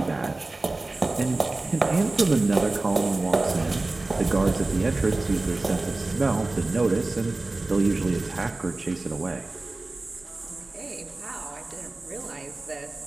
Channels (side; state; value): left; quieter; 3.1 dB